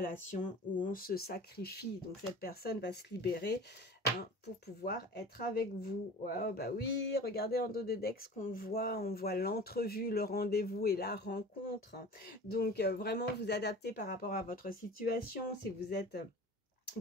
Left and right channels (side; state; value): both; normal; correlation 0.39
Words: où on se sacrifie. Donc, cette personne va se libérer, hein, pour pouvoir être avec vous. Ouais, bah oui, regardez en dos de deck ce qu'on voit. On voit l'entrevue, le rendez-vous et la rencontre. Donc, vraiment vous adapter par rapport à votre situation. Si vous êtes